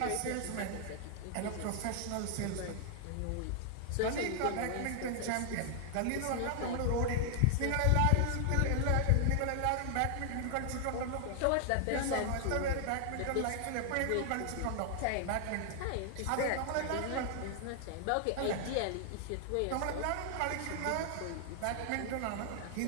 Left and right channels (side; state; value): both; different; correlation 0.00